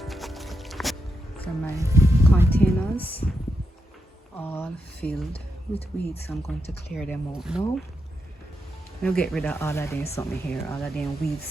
So my containers all filled with weeds. I'm going to clear them out now. I'll get rid of all of them something here, all of them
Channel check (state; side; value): normal; both; correlation 0.84